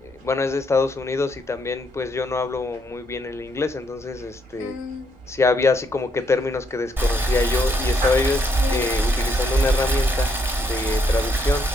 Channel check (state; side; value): normal; both; correlation 0.74